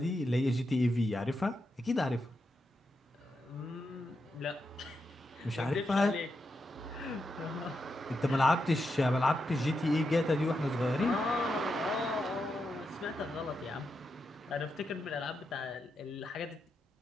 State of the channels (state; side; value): normal; both; correlation 0.85